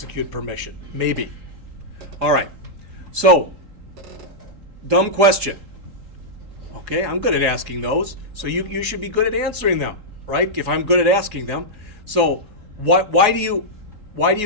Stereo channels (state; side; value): late; left; 3.7 ms